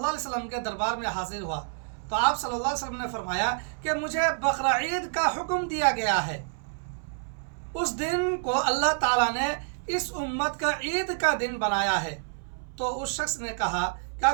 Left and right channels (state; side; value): silent; left; 59 dB below the other